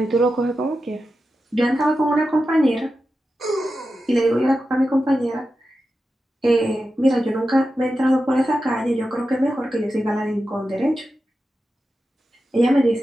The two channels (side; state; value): both; normal; correlation 0.91